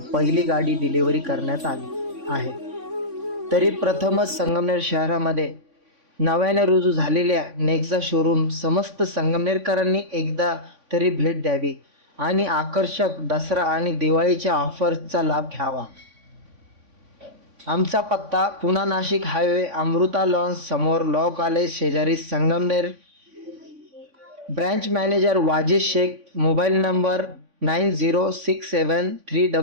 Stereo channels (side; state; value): left; late; 3.5 ms